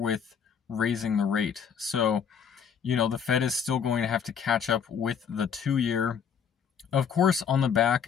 raising the rate. So, the Fed is still going to have to catch up with the 2-year. Of course, on the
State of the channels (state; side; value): quieter; right; 7.2 dB